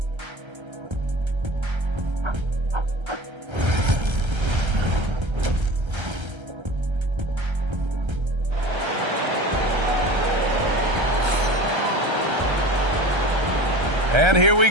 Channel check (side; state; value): left; late; 1.3 ms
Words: And here we